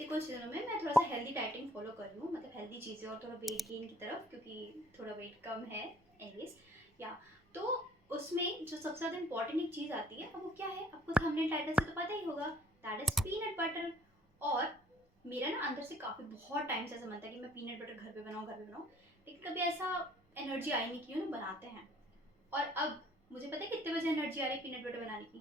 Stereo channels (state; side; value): normal; both; correlation 0.58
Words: कुछ दिनों में मैं थोड़ा सा हेल्दी डाइटिंग फॉलो कर रही हूँ, मतलब हेल्दी चीज़ें और थोड़ा वेट गेन की तरफ, क्योंकि थोड़ा वेट कम है एनीवेज। या तो उसमें जो सबसे ज़्यादा इंपॉर्टेंट एक चीज़ आती है, अब वो क्या है आपको थंबनेल टाइटल से तो पता ही होगा, दैट इज़ पीनट बटर। और मेरा ना अंदर से काफ़ी बहुत टाइम से ऐसा मन था कि मैं पीनट बटर घर पे बनाऊँ, लेकिन कभी ऐसा एनर्जी आई नहीं कि बनाते हैं। और अब मुझे पता है कितने बजे एनर्जी आ रही है पीनट बटर बनाने